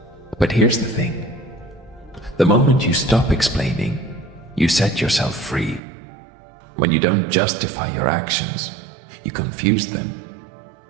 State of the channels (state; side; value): drops out; left; at 5.8 s